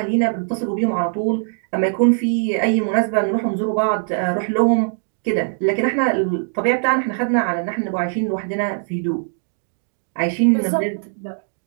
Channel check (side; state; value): left; silent; 65 dB below the other